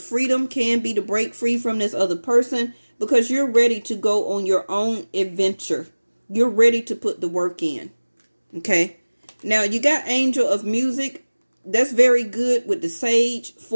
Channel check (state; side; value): inverted; both; correlation -1.00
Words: freedom, can be to break free from this other person, because you're ready to go on your own adventure. You're ready to put the work in. Okay. Now you got angel of music. That's very good with the sage